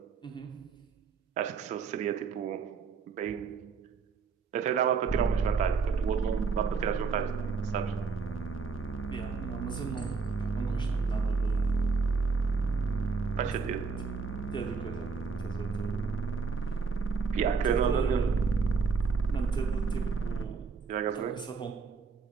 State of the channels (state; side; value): quieter; left; 5.1 dB